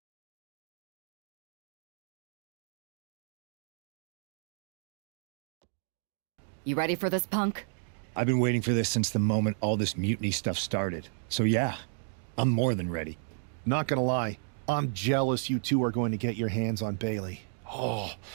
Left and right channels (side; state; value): left; silent; digital silence